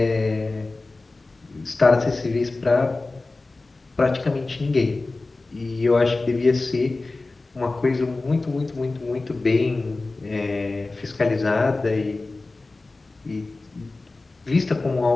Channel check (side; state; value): right; quieter; 3.3 dB